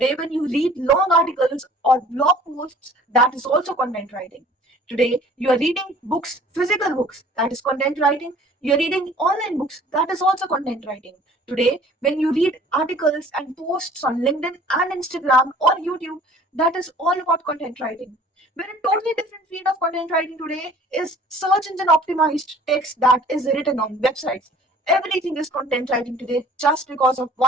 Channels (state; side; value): normal; both; correlation 0.51